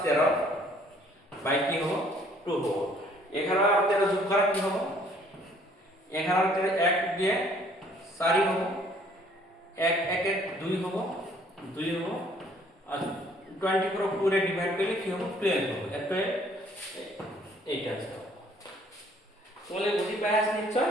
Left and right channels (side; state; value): both; normal; correlation 0.60